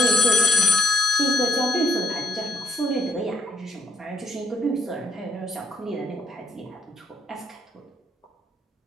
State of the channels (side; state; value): both; normal; correlation 0.73